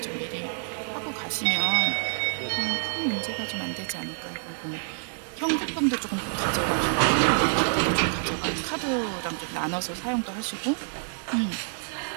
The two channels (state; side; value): silent; left; digital silence